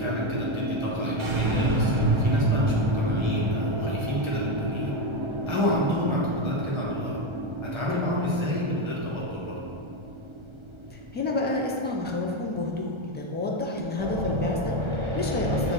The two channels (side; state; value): left; late; 1.3 ms